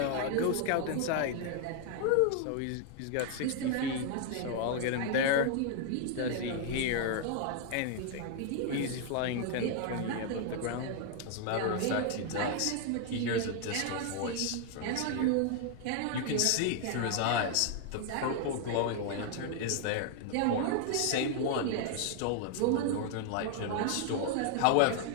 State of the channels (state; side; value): different; both; correlation 0.00